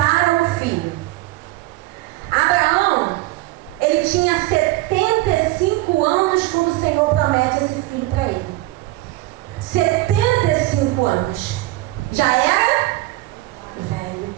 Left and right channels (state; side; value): quieter; left; 18.4 dB